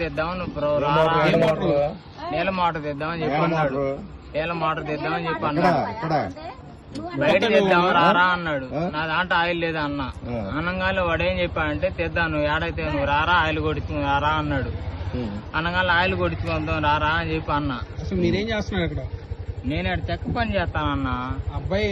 తెద్దామని నీళ్ళ మోటార్ తెద్దామని చెప్పి అన్నాడు. నీళ్ళ మోటార్ తెద్దామని చెప్పి అన్నాడు. బయట తెద్దాం రారా అన్నాడు. నా దాంట్లో ఆయిల్ లేదా అన్న. అనగానే వాడు ఏం చెప్పాడంటే తెద్దాం, నువ్వు ఏడైతే నువ్వు రారా ఆయిల్ కొడుచుకుని రారా అన్నాడు. అనగానే ఆయిల్ కొడుచుకుందాం రారా అని చెప్పి అన్న. అసలు మీరేం చేస్తున్నారు ఇక్కడ? నేను అక్కడ చెక్క పని చేస్తానన్న. అబ్బాయి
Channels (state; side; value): identical; both; correlation 1.00